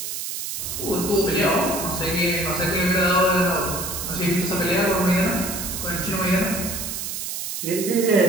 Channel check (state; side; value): noise; right; hiss, 5 dB below the sound